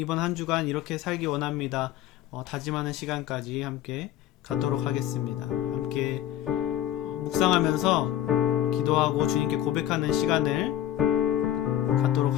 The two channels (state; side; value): quieter; right; 12.3 dB